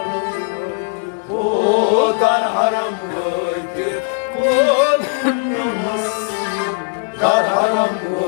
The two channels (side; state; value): right; silent; digital silence